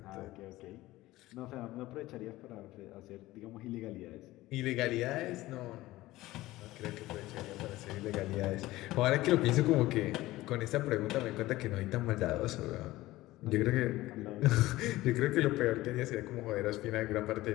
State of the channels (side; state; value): right; quieter; 17.6 dB